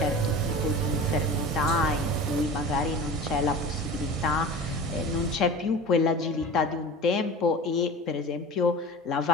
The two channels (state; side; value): normal; both; correlation 0.35